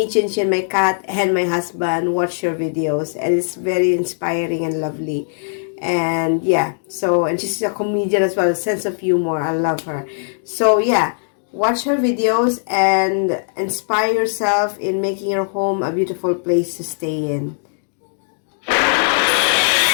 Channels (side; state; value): right; silent; digital silence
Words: Chinchin, my cat, and my husband watch your videos, and it's very inspiring and lovely. And yeah, and she's a comedian as well, a sense of humor. I love her. So yeah, watch her videos and inspire yourself in making your home a beautiful place to stay in.